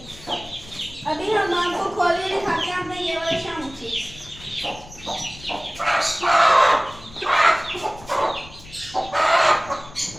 अभी हम आपको खोल के दिखाते हैं अपने ये वाले शामू चिक्स।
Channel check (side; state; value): left; noise; rumble, 19 dB below the sound